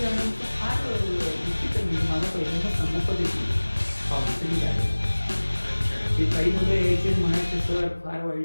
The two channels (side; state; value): both; inverted; correlation -1.00